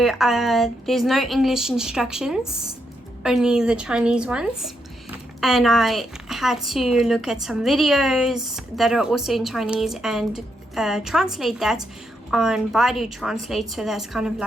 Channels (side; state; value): both; normal; correlation 0.80